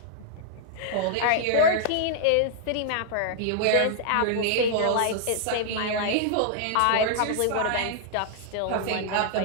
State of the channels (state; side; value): different; both; correlation -0.01